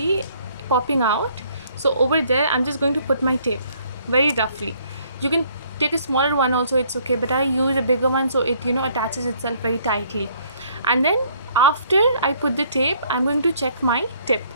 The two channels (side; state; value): both; inverted; correlation -0.63